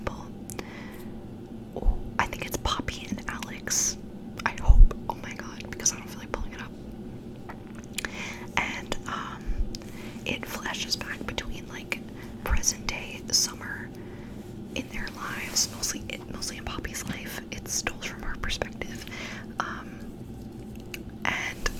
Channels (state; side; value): identical; both; correlation 1.00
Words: Oh, I think it's Poppy and Alex, I hope. Oh my god, because I don't feel like pulling it up. And it flashes back between like present day summer in their lives, mostly in Poppy's life. It's told from her perspective,